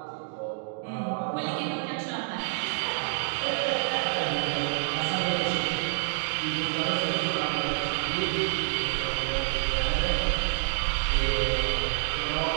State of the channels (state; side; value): silent; left; digital silence